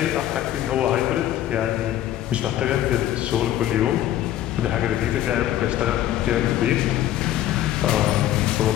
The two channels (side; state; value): right; quieter; 12.7 dB